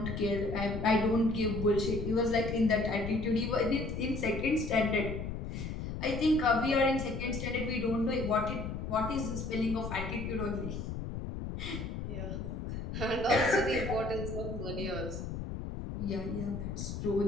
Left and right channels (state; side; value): noise; left; rumble, 5 dB below the sound